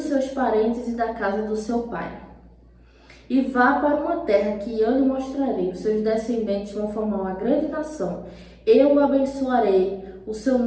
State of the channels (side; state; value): both; identical; correlation 1.00